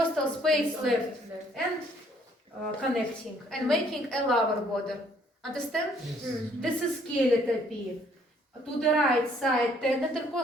space left, and connecting and making a lower border. Understand? This is skeletopy. To the right side, 10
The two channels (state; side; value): normal; both; correlation 0.63